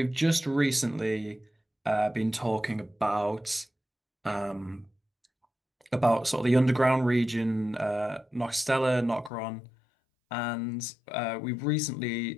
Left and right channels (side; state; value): right; drops out; at 9.3 s